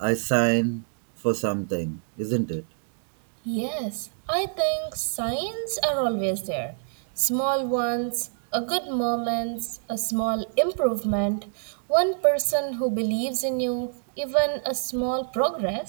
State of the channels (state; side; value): silent; left; digital silence